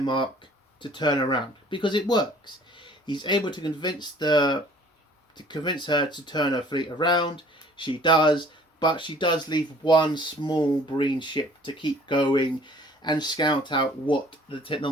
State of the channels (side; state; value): both; normal; correlation 0.53